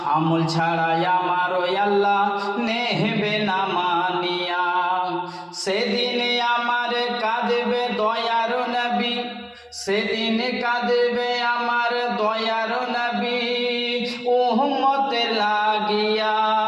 আমল ছাড়াই আমার আল্লাহ নেবে না মানিয়া। সেদিন আমার কাঁদবে দয়ার নবী, সেদিন কাঁদবে আমার দয়ার নবী, উম্মতের লাগিয়া,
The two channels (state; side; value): identical; both; correlation 1.00